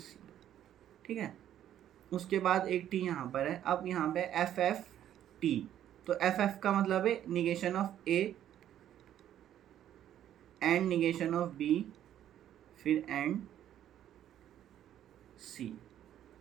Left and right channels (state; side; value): quieter; left; 11.1 dB